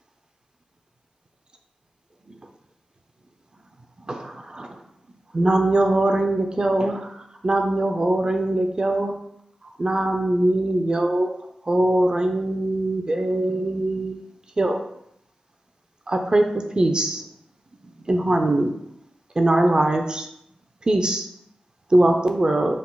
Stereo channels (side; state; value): both; normal; correlation 0.94